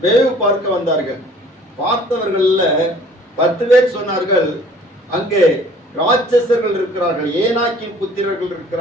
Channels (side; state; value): both; normal; correlation 0.53